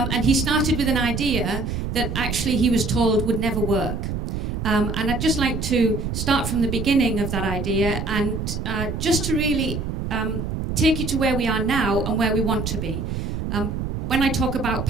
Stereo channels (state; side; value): noise; right; rumble, 3 dB below the sound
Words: he started with an idea that actually he was told would never work. And I'd just like to start from the beginning of that idea and just to really take you to where we are now and where we want to be. When I talk about